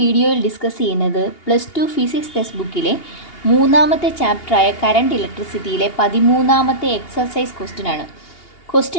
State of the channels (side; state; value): right; late; 2.8 ms